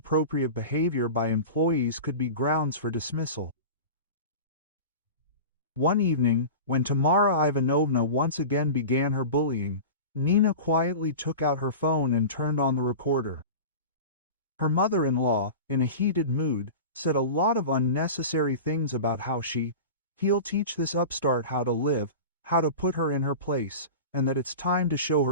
behavior by employees could be grounds for dismissal. One evening, when Tamara Ivanovna once again began her bullying, Nina quietly took out her phone and turned on the recorder. Her mother-in-law, in a heated mood, said a lot of unnecessary things about how he'll teach this upstart how to live, how to put her in her place, and that it's time to show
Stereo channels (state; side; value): inverted; both; correlation -0.32